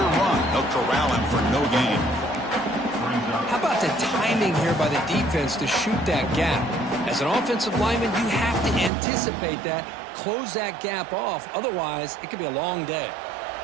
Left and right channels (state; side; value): drops out; left; at 8.9 s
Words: run. They'll corral him for no gain. How about the timing here by the defense to shoot that gap? As an offensive lineman, you have to anticipate that, close that gap off. Otherwise, it could be a long day.